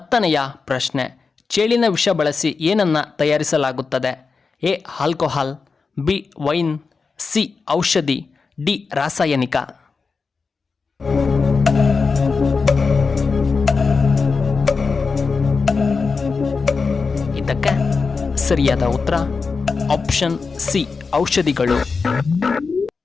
ಪ್ರಶ್ನೆ, ಚೇಳಿನ ವಿಷ ಬಳಸಿ ಏನನ್ನ ತಯಾರಿಸಲಾಗುತ್ತದೆ? A alcohol, B wine, C ಔಷಧಿ, ಡಿ ರಾಸಾಯನಿಕ. ಇದಕ್ಕೆ ಸರಿಯಾದ ಉತ್ತರ ಆಪ್ಷನ್ ಸಿ ಔಷಧಿಗಳು.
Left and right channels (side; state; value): right; quieter; 4.7 dB